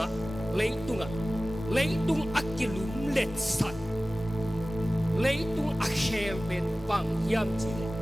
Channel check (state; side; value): normal; both; correlation 0.97